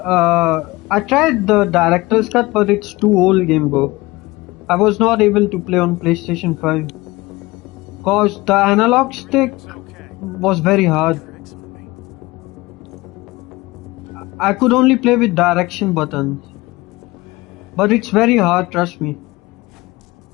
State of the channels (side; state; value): right; quieter; 21.0 dB